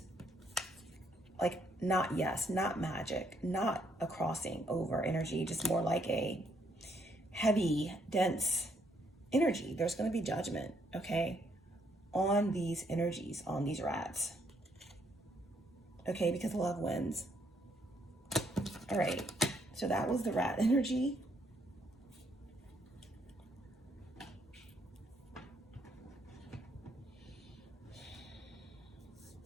like not yes, not magic, not a crossing over energy, just more like a heavy, dense energy. There's going to be judgment, okay, on these energies, on these rats, okay, because love wins. All right, so that was the rat energy.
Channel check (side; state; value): both; normal; correlation 0.71